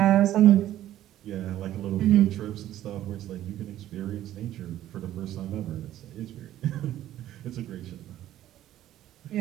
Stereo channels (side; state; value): left; quieter; 13.0 dB